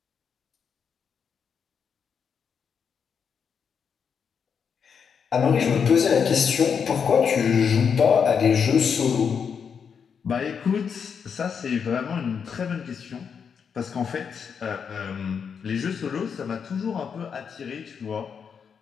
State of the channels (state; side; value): quieter; right; 6.7 dB